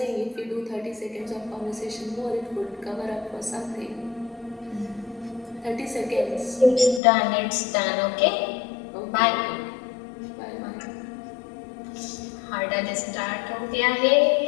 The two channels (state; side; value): drops out; right; at 7.0 s